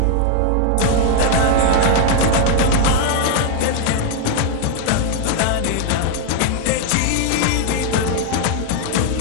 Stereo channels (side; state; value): both; different; correlation 0.00